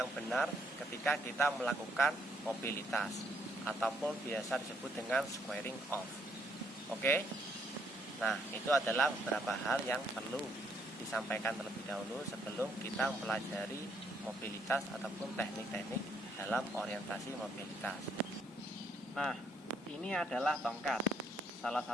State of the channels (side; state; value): both; normal; correlation 0.71